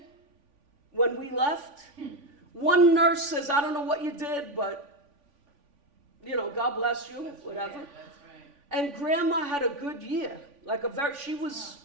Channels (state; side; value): late; left; 3.5 ms